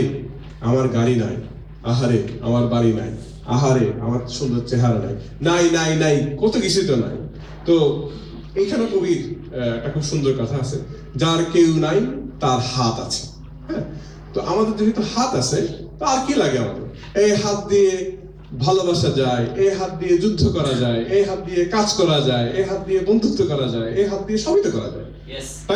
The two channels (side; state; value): both; identical; correlation 1.00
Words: আমার গাড়ি নাই, আহারে আমার বাড়ি নাই, আহারে আমার সুন্দর চেহারা নাই, নাই নাই নাই কত কিছু তো নাই। তো এইখানে কবির একটা খুব সুন্দর কথা আছে, যার কেউ নাই তার হাত আছে। হ্যাঁ, তো আমাদের যেহেতু হাত আছে, তো আর কি লাগে আমাদের? এই হাত দিয়ে ভালোবাসা যায়, এই হাত দিয়ে যুদ্ধ করা যায়, এই হাত দিয়ে কাজ করা যায়, এই হাত দিয়ে বন্ধুত্ব করা যায়, এই হাত দিয়ে সবই তো করা যায়,